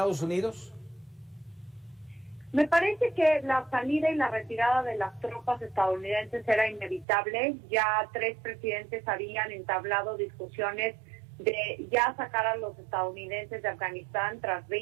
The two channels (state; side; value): drops out; left; at 7.1 s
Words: Unidos? Me parece que la salida y la retirada de las tropas estadounidenses era inevitable. Ya 3 presidentes habían entablado discusiones de ya sacar a los estadounidenses de Afganistán tras